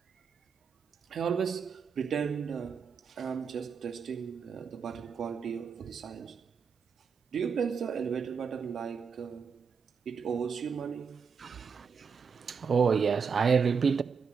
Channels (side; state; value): left; quieter; 6.0 dB